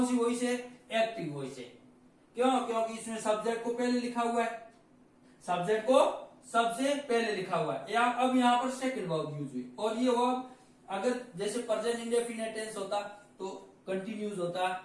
सी वॉइस है? एक्टिव वॉइस है। क्यों? क्योंकि इसमें सब्जेक्ट को पहले लिखा हुआ है, सब्जेक्ट को सबसे पहले लिखा हुआ है। अब यहाँ पर सेकंड वर्ब यूज हुई। और ये वर्ब अगर जैसे प्रेजेंट इंडेफिनिट टेंस होता तो कंटिन्यूज होता,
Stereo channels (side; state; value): both; identical; correlation 1.00